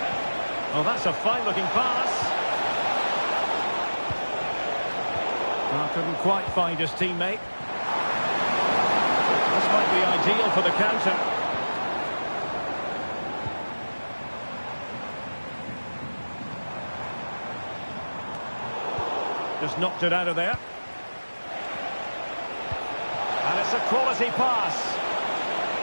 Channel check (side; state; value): both; inverted; correlation -1.00